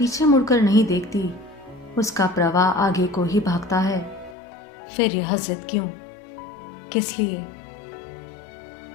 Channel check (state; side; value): drops out; right; at 4.4 s